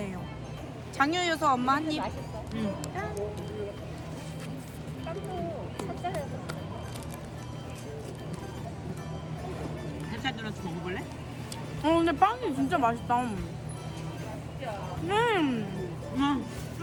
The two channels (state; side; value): identical; both; correlation 1.00